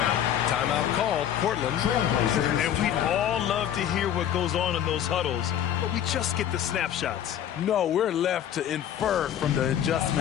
Timeout called, Portland. And we'd all love to hear what goes on in those huddles, but we just get the snapshots. No, we're left to infer from the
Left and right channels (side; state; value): right; quieter; 10.3 dB